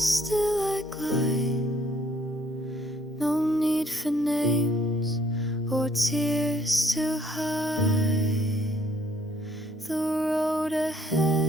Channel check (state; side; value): normal; both; correlation 0.65